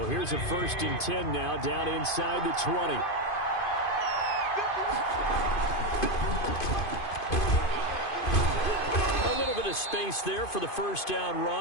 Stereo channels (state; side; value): late; right; 2.5 ms